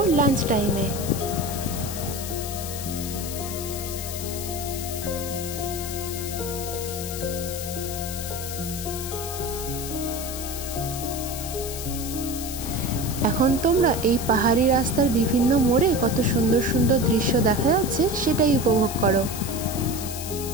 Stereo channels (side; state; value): left; noise; hiss, 8 dB below the sound